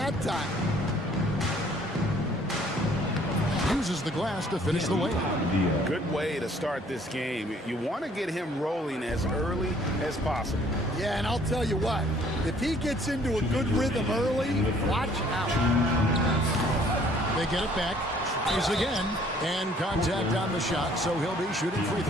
time. Uses the glass to finish the layup. Good way to start this game. You want to get him rolling as early as possible. Yeah, and I'll tell you what, if he gets into a good rhythm early, watch out. They get it back. Tries again, and contact on the shot, so he'll be shooting free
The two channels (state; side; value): normal; both; correlation 0.59